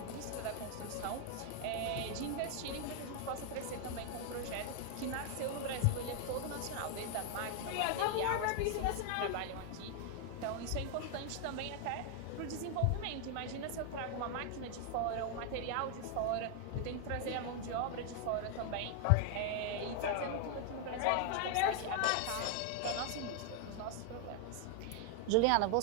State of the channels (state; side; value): different; both; correlation 0.00